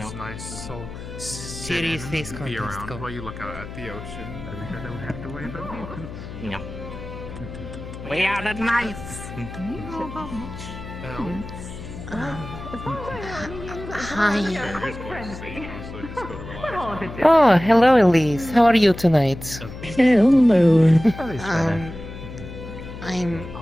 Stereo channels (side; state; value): left; noise; hum, 11 dB below the sound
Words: nice. So sit and be around while you look out at the ocean. I don't have to worry about it. No. We are the knights. Hi. Oh, hello, Elise. How are you tonight? Hello. I'm